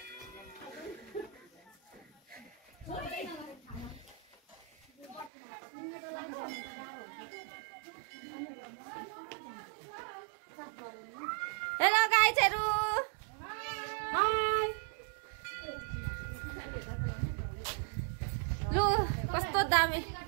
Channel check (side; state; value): left; drops out; at 5.3 s